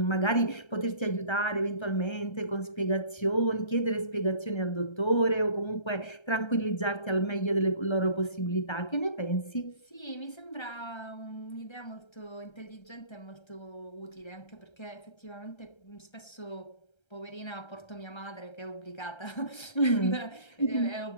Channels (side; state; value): right; late; 1.3 ms